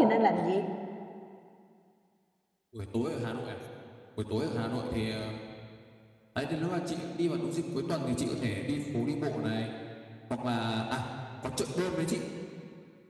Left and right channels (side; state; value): both; identical; correlation 1.00